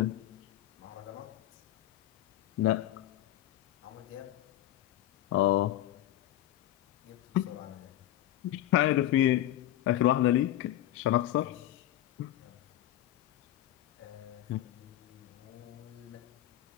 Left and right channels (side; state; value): right; quieter; 13.6 dB